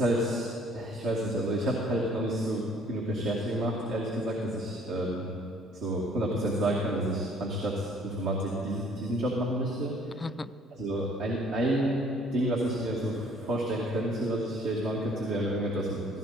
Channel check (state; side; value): normal; both; correlation 0.58